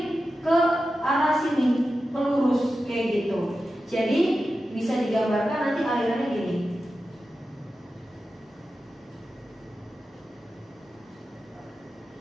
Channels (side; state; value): both; normal; correlation 0.92